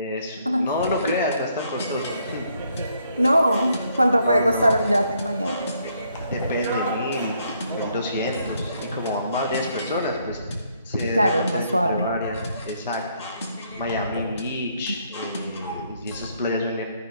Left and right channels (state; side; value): inverted; both; correlation -0.71